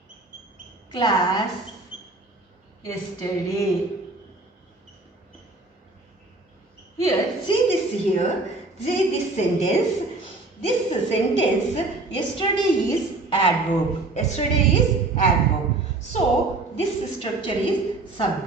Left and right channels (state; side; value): quieter; left; 3.2 dB